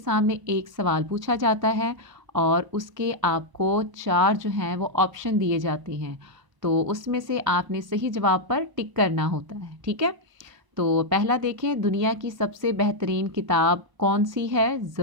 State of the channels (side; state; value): left; late; 1.0 ms